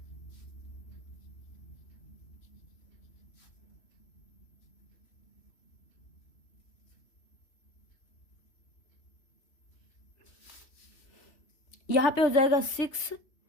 यहाँ पे हो जाएगा 6,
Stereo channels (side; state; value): right; late; 3.1 ms